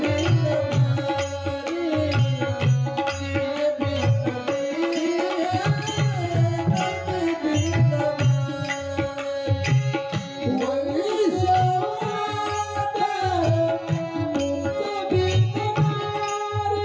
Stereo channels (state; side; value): identical; both; correlation 1.00